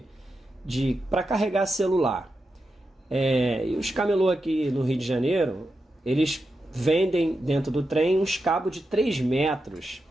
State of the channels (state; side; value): normal; both; correlation 0.88